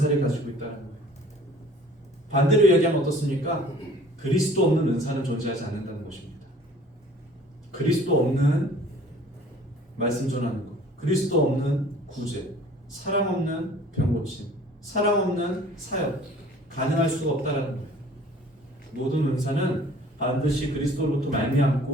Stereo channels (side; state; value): both; normal; correlation 0.51